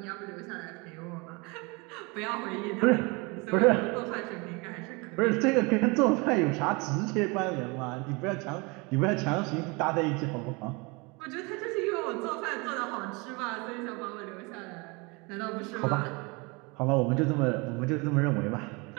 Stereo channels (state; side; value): quieter; left; 28.0 dB